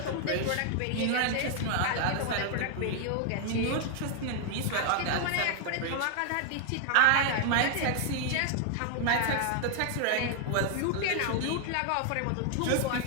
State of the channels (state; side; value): different; both; correlation 0.00